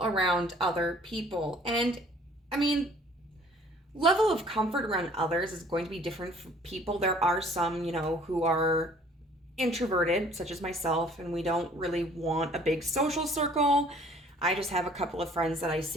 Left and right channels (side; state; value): both; normal; correlation 0.55